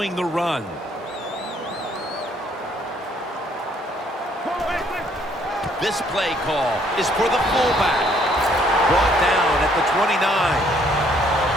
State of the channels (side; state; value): both; normal; correlation 0.65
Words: the run. This play call is for the fullback. Brought down at the 29.